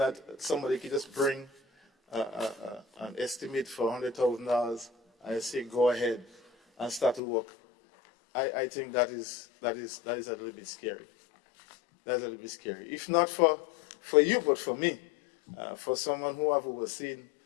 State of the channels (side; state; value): right; drops out; at 7.2 s